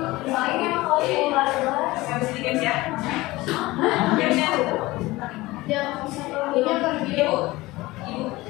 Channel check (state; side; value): quieter; right; 19.8 dB